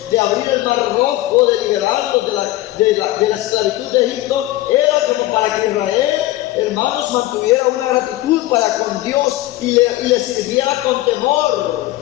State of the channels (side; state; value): right; quieter; 16.6 dB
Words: de abrir el mar rojo, de liberarlos de la esclavitud de Egipto, era como para que Israel, hermanos, mantuviera una gratitud para con Dios y le sirviera con temor.